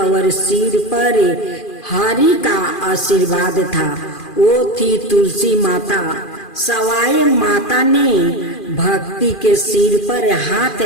सिर पर हरि का आशीर्वाद था। वो थी तुलसी माता। सवाई माता ने भक्ति के सिर पर हाथ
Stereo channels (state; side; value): late; right; 2.4 ms